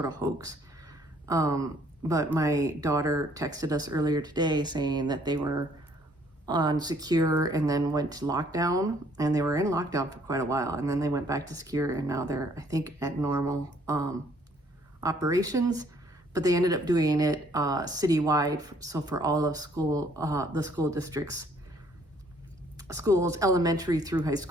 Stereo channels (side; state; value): both; normal; correlation 0.62